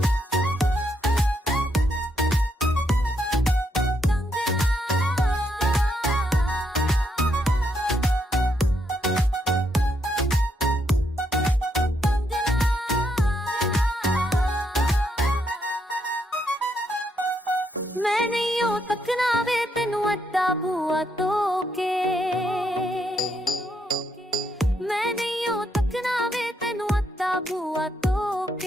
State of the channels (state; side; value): normal; both; correlation 0.77